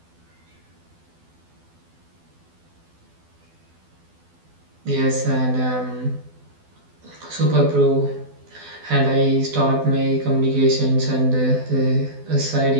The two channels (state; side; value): late; left; 12 ms